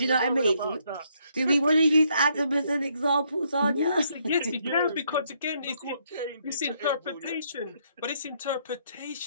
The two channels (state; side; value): inverted; both; correlation -0.72